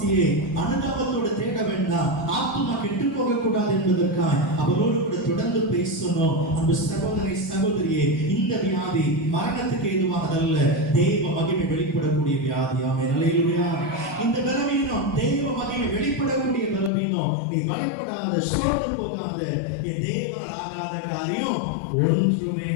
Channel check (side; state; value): right; drops out; at 16.9 s